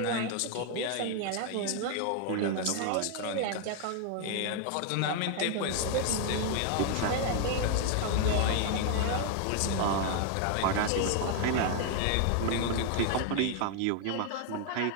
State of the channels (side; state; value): both; different; correlation 0.00